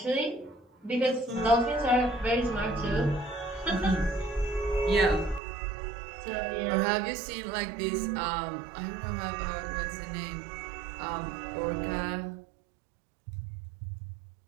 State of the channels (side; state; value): left; drops out; at 5.4 s